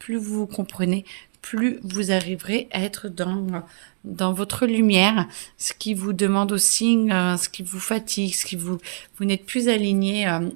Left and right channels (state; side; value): silent; left; digital silence